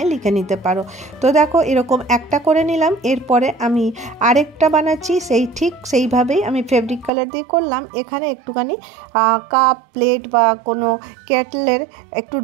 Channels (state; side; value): drops out; left; at 7.1 s